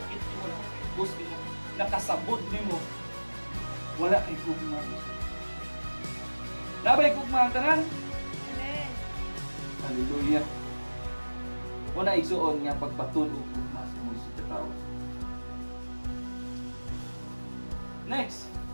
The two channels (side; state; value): both; inverted; correlation -1.00